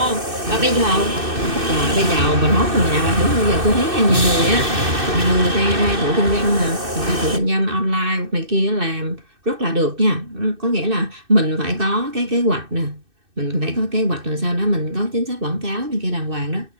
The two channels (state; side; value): late; left; 2.6 ms